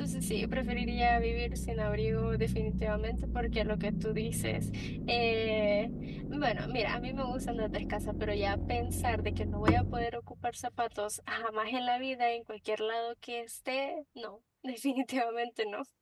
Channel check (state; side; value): identical; both; correlation 1.00